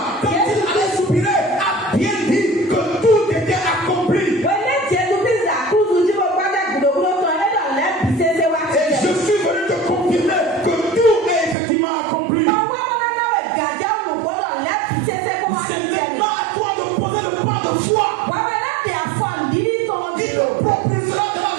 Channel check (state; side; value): drops out; left; at 11.6 s